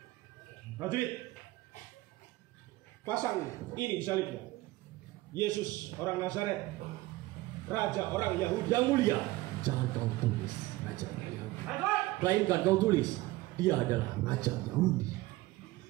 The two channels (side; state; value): left; quieter; 18.8 dB